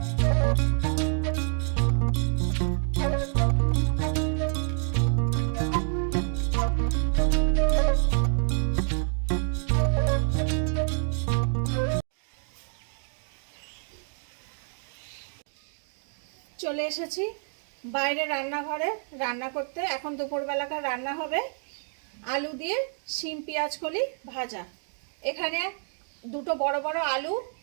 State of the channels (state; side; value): silent; left; 60 dB below the other